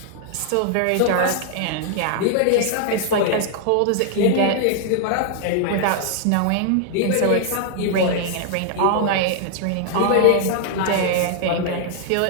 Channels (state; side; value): different; both; correlation 0.00